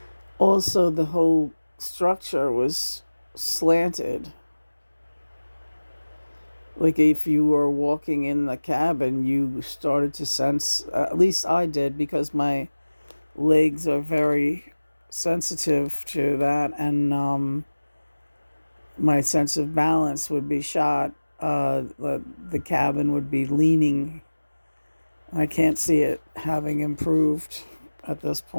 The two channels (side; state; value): both; inverted; correlation -1.00